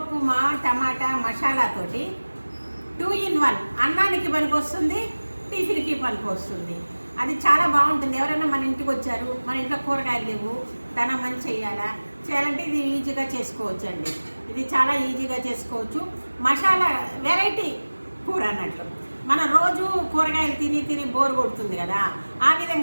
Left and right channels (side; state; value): both; inverted; correlation -1.00